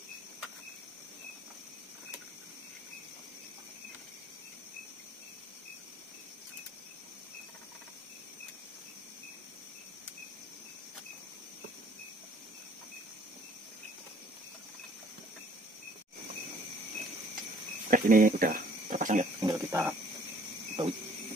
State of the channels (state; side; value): normal; both; correlation 0.58